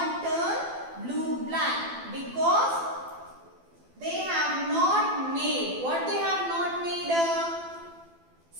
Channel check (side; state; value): left; late; 12 ms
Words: turned blue-black because they have not made, what they have not made?